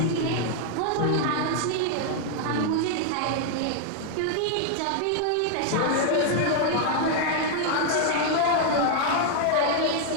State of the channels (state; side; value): different; both; correlation 0.00